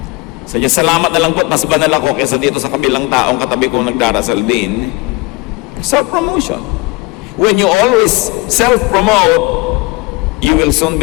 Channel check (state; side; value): quieter; right; 24.3 dB